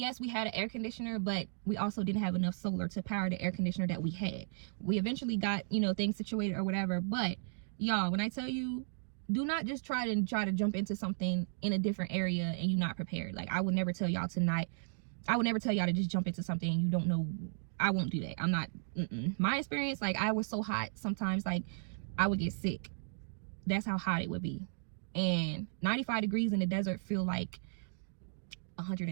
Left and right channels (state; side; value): silent; left; digital silence